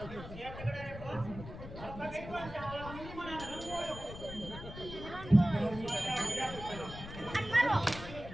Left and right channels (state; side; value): noise; left; rumble, 11 dB below the sound